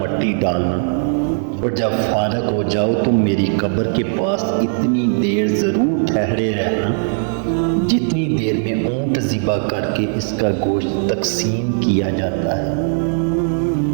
ڈالنا، اور جب فارغ ہو جاؤ تو میری قبر کے پاس اتنی دیر ضرور ٹھہرے رہنا جتنی دیر میں اونٹ ذبح کر کے اس کا گوشت تقسیم کیا جاتا ہے،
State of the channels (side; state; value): left; silent; digital silence